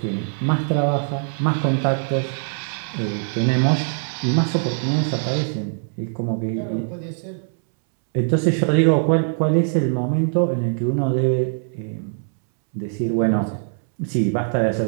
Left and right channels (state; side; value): silent; left; 64 dB below the other